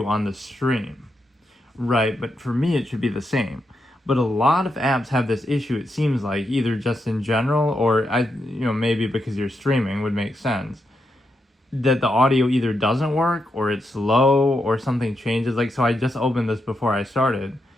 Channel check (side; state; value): both; normal; correlation 0.83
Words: on the stream. Right, but for me it should be the same. But a lot of apps have this issue, it seems like, either just in general or maybe because you're streaming would make sense. That the audio either doesn't work or it's low or something changes. Like so I just opened this before I started